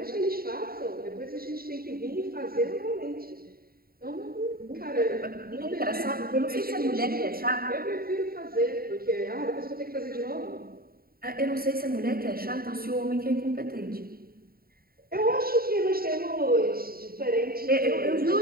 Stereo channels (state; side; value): late; left; 0.43 ms